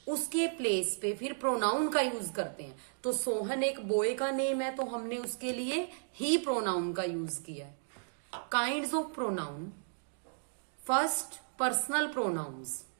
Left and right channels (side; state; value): left; silent; digital silence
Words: उसके प्लेस पे फिर प्रोनाउन का यूज करते हैं. तो सोहन एक बॉय का नेम है तो हमने उसके लिए ही प्रोनाउन का यूज किया है. Kinds of pronoun. First, personal pronouns.